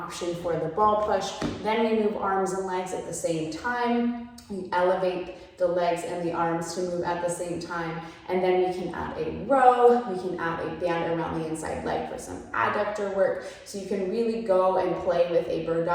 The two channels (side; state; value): both; identical; correlation 1.00